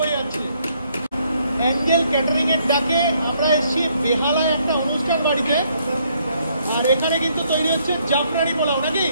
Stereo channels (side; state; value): both; inverted; correlation -0.69